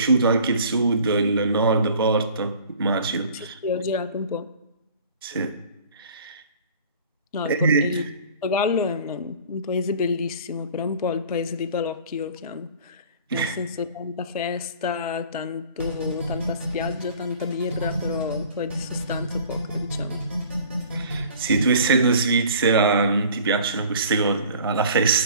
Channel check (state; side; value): inverted; both; correlation -0.47